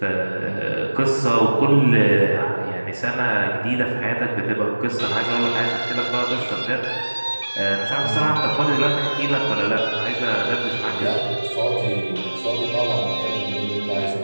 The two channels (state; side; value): inverted; both; correlation -1.00